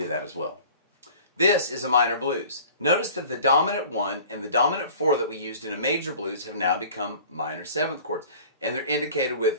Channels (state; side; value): inverted; both; correlation -0.45